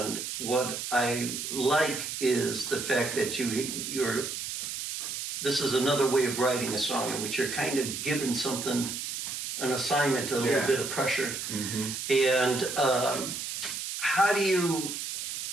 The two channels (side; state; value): right; noise; hiss, 5 dB below the sound